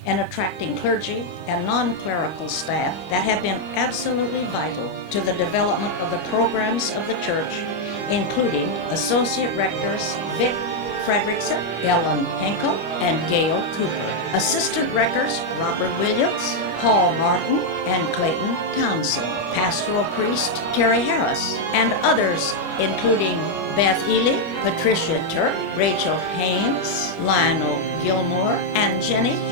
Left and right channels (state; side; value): late; right; 25 ms